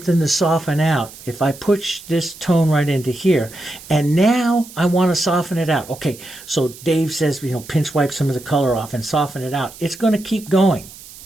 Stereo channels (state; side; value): noise; right; hiss, 18 dB below the sound